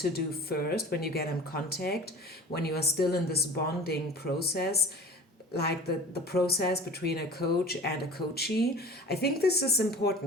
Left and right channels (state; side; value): normal; both; correlation 0.41